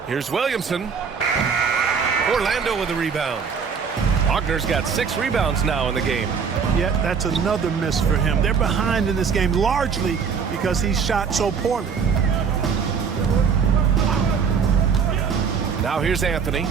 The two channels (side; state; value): left; quieter; 6.2 dB